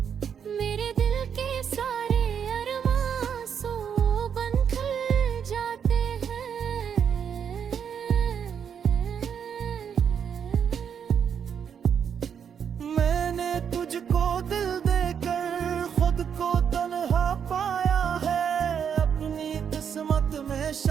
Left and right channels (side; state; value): left; quieter; 7.7 dB